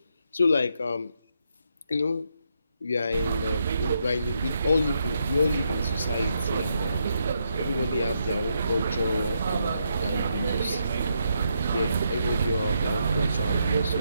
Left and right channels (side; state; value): both; inverted; correlation -0.79